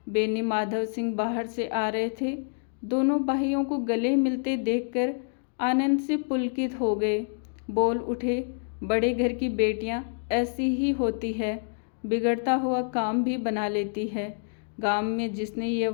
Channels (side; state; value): right; silent; digital silence